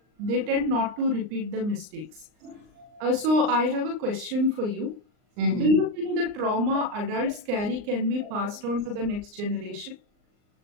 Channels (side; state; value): left; late; 39 ms